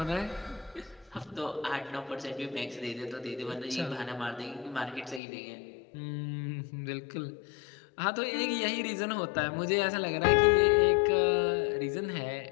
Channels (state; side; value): drops out; right; at 5.2 s